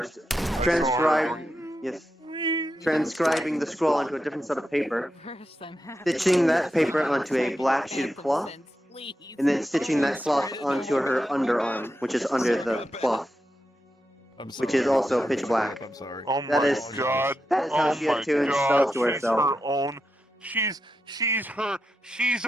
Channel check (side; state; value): both; normal; correlation 0.87